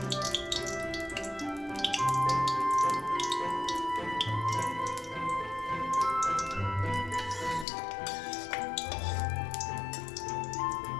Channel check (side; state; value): right; drops out; at 7.7 s